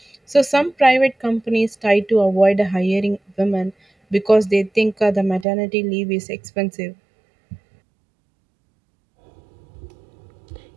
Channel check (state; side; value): drops out; left; at 5.5 s